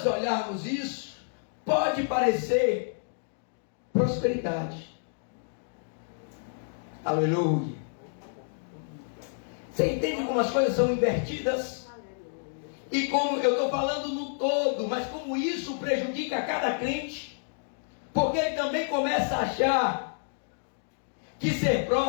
olharmos isso, pode parecer prosperidade. Aleluia. Você entende como as coisas são invertidas? E como eu estou falando no todo, mas como isso prejudica cada crente? Porque ele também começa a achar que ser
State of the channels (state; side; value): silent; right; digital silence